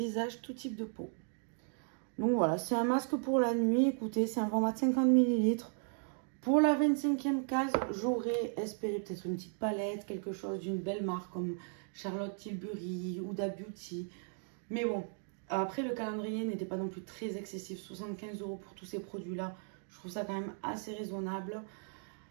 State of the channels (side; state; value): left; silent; 54 dB below the other